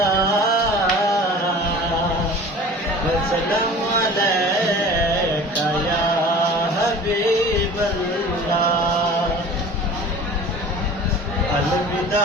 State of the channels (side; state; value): both; normal; correlation 0.42